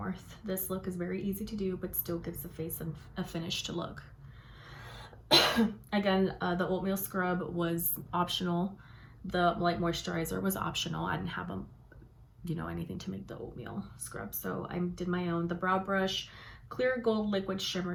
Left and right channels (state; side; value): identical; both; correlation 1.00